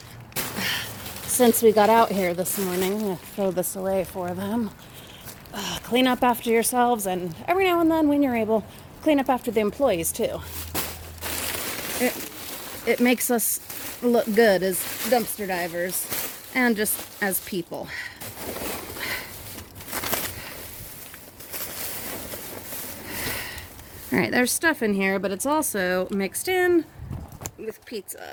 since we got out here this morning. I'm going to throw this away for them. Clean up after yourselves, and every now and then when you're able, clean up after the employees too. It makes us look good as dumpster divers and just as people. Alright, there's stuff in here, but it's also mixed in with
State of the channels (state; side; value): identical; both; correlation 1.00